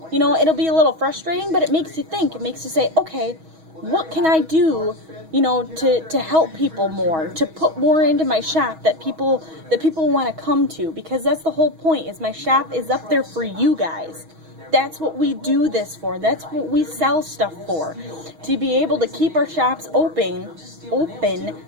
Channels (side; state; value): left; late; 6.3 ms